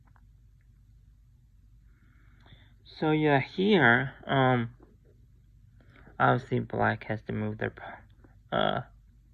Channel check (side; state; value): both; identical; correlation 1.00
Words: So yeah, here, obviously black has to move their,